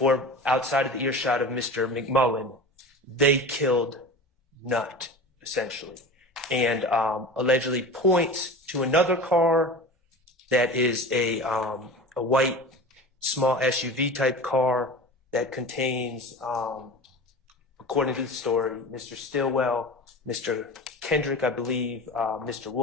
outside of the earshot of Mr. McMullen, they killed Nutt, essentially, and allegedly points to another car that is a white small SUV type car that contains, according to the story, Mr. Stillwell, Mr. Kendrick, I believe, Mr.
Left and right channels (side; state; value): both; normal; correlation 0.33